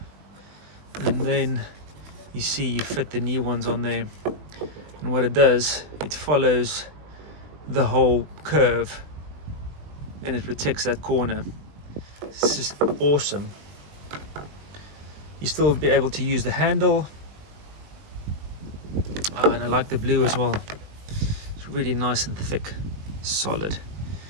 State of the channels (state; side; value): late; left; 20 ms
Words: and then you see you fit the new ones on there. And what it does, it follows the whole curve and it protects that corner. This is awesome. You still be able to use the handle. Oh, and I like the blue as well. Really nice and thick, solid.